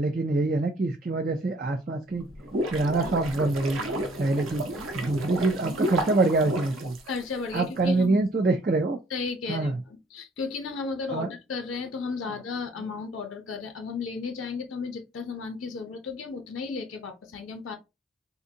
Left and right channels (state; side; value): normal; both; correlation 0.59